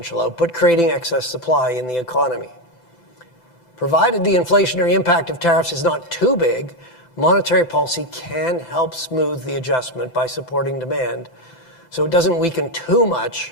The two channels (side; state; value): right; late; 7.9 ms